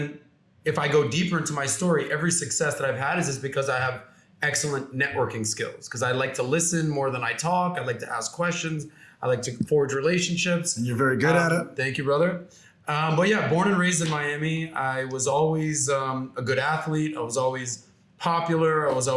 if I go deeper into my story, every success that I've had is just because I have excellent networking skills, because I like to listen more than I talk. I like to ask questions. I like to forge relationships. And you're very good at it. Thank you, brother. But yeah, born and raised in Miami. I was always a good athlete. I was always popular. I was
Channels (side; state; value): both; identical; correlation 1.00